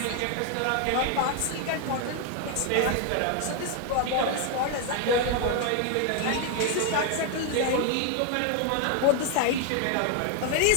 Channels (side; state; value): both; different; correlation 0.00